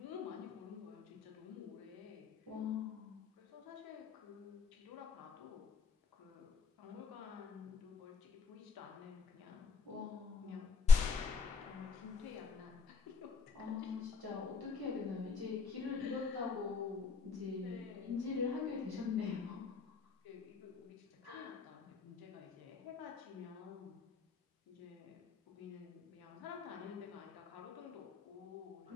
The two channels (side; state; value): right; quieter; 5.2 dB